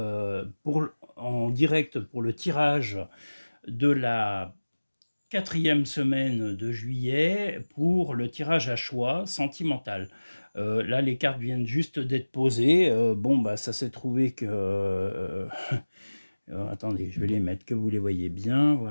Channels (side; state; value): both; inverted; correlation -1.00